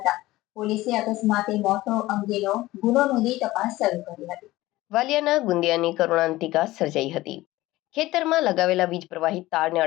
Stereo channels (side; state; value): right; quieter; 17.7 dB